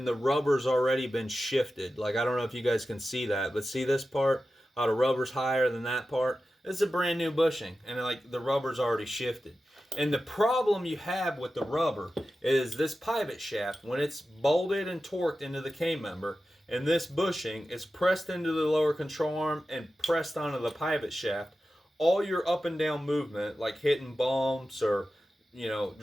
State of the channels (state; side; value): normal; both; correlation 0.93